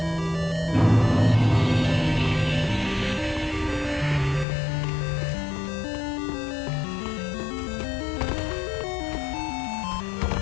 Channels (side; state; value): right; drops out; at 4.5 s